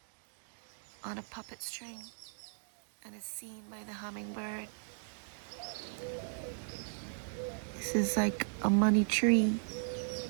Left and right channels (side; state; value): left; silent; digital silence